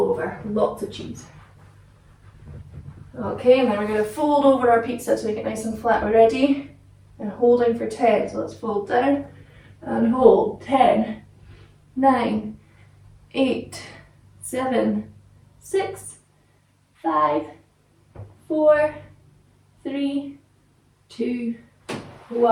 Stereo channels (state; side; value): identical; both; correlation 1.00